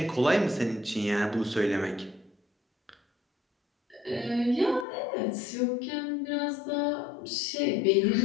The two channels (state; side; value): drops out; right; at 4.9 s